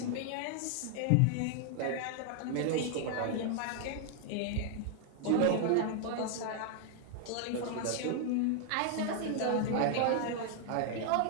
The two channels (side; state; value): both; different; correlation 0.00